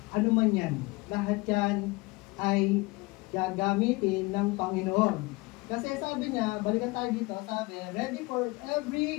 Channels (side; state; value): right; quieter; 24.2 dB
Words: Ano man yan. Lahat yan ay gagamitin ng Panginoon. Kasi sabi niya, balikan tayo dito, sabi, ready for